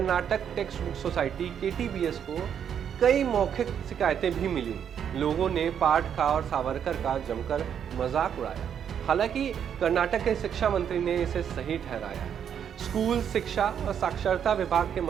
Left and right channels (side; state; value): left; quieter; 8.5 dB